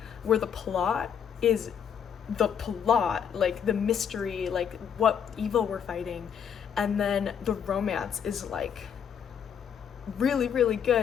where the plot is the plot, like the mystery, like what evil we're fighting, and then the romance is like really, really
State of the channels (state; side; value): quieter; right; 7.9 dB